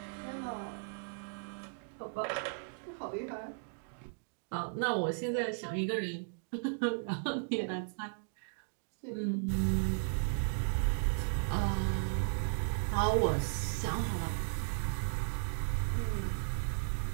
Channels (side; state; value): left; silent; digital silence